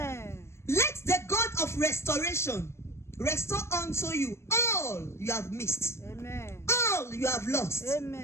Let the God of restoration restore unto you all you have missed, Amen. all you have lost,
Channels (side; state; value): right; late; 0.13 ms